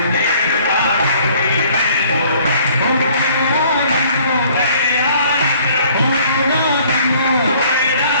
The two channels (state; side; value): inverted; both; correlation -0.57